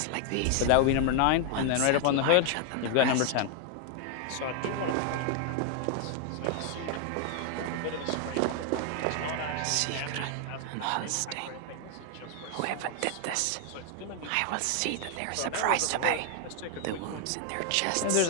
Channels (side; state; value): both; different; correlation 0.00